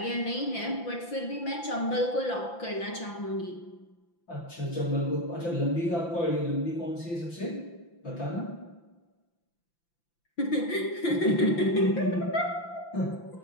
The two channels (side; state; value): right; late; 5.9 ms